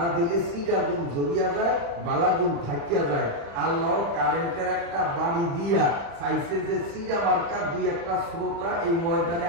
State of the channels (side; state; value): left; late; 35 ms